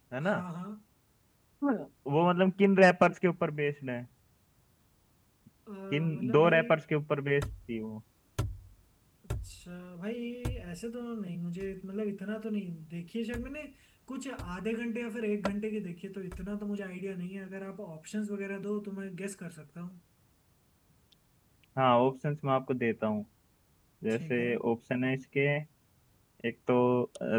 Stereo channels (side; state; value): both; identical; correlation 1.00